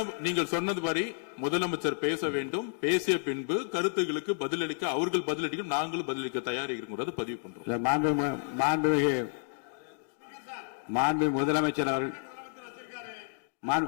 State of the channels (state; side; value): silent; right; digital silence